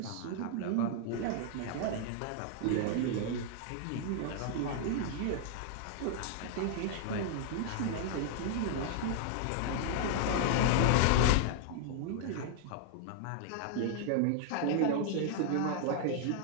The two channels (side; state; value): both; different; correlation -0.01